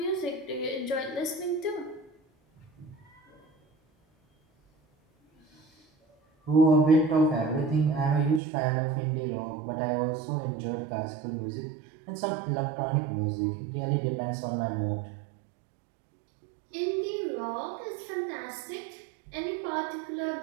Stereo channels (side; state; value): left; drops out; at 8.4 s